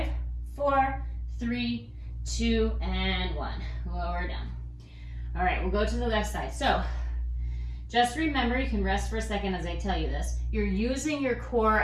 4, 3, 2, and 1. Lower down. All right, we'll go to the left side. So Just remember, you can rest for a second as I tell you this. You're using your core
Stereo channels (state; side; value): identical; both; correlation 1.00